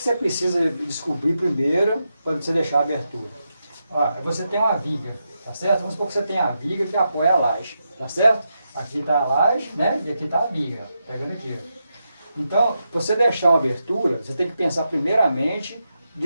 precisa descobrir primeiro para você deixar a abertura? Ó, você tem uma viga, tá certo? Vamos supor que você tem a viga que apoia a laje, tá certo? Aqui está a laje, né? E aqui está a viga, ó, pegando aqui, ó. Então, para você deixar uma abertura, você tem que pensar primeiramente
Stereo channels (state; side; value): inverted; both; correlation -0.86